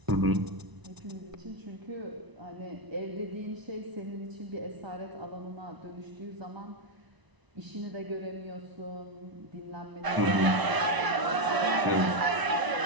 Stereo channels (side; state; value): left; late; 1.0 ms